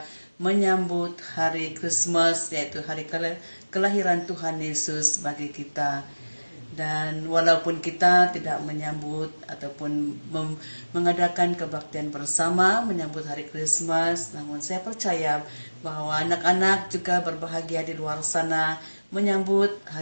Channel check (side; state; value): both; inverted; correlation -1.00